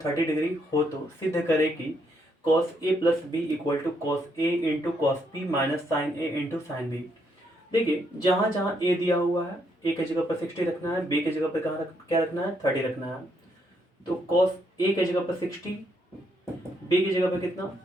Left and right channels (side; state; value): both; normal; correlation 0.74